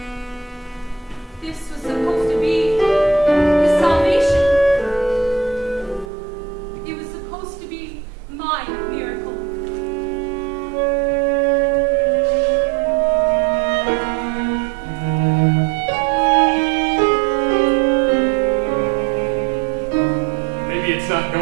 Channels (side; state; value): left; drops out; at 6.1 s